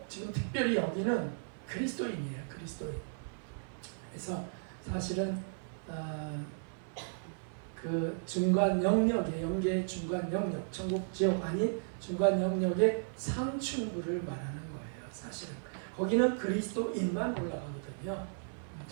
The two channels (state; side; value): silent; left; 54 dB below the other